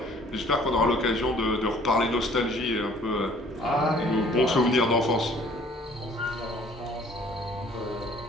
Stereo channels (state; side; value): normal; both; correlation 0.56